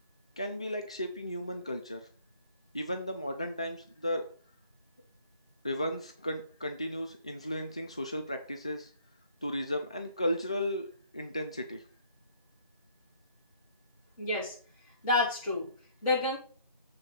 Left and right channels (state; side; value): inverted; both; correlation -0.61